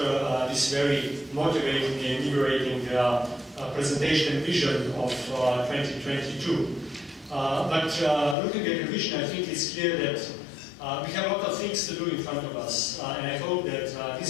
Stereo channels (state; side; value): drops out; right; at 8.3 s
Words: this very motivating and invigorating presentation and vision of 2022. But looking at the vision, I think it's clear that we have a lot of things to do in front of us, and I hope that